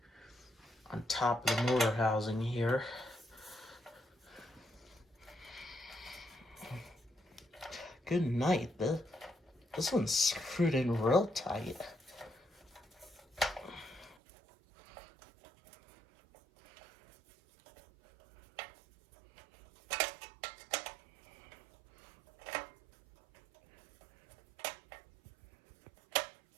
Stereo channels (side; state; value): left; drops out; at 14.2 s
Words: on top of the motor housing here. Good night. This one's screwed in real tight.